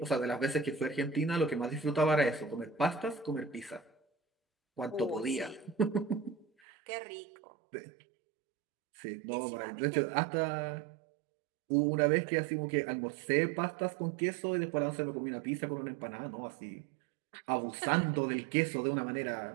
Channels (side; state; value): left; drops out; at 6.5 s